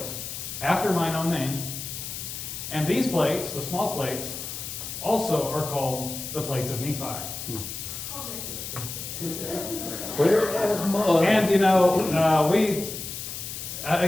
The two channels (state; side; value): noise; left; hiss, 7 dB below the sound